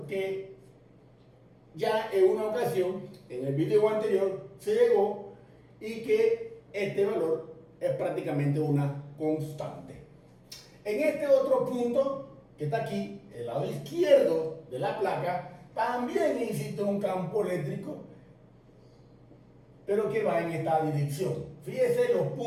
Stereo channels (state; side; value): identical; both; correlation 1.00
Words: que ya en una ocasión, en el video anterior, se llegó, y que este valor es prácticamente una constante. En este otro punto, que está aquí, el lado izquierdo de la placa, también existe un campo eléctrico, pero que va en esta dirección. Fíjese los